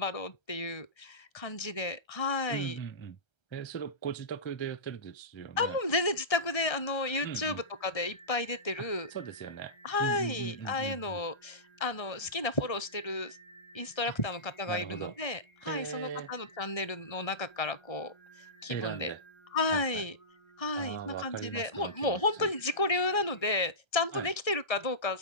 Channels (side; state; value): right; late; 1.3 ms